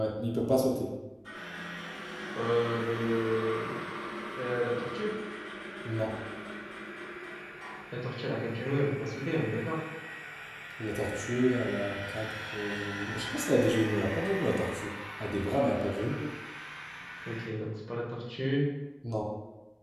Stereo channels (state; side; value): identical; both; correlation 1.00